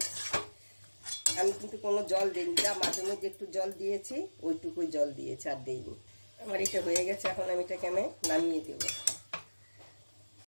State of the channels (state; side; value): inverted; both; correlation -1.00